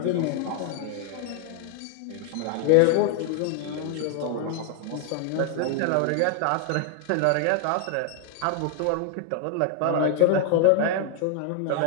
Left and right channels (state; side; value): different; both; correlation 0.00